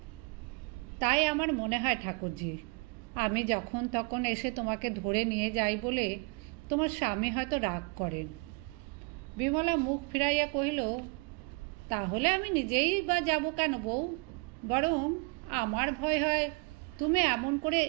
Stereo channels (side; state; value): left; quieter; 30.7 dB